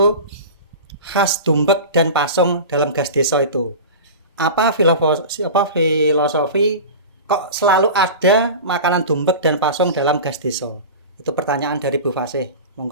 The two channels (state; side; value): inverted; both; correlation -0.31